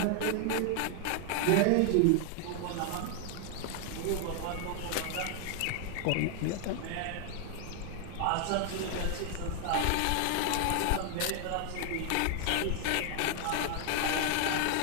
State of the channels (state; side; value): different; both; correlation 0.00